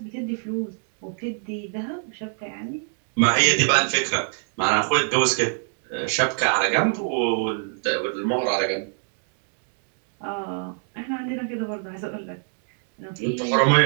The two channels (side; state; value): left; silent; 59 dB below the other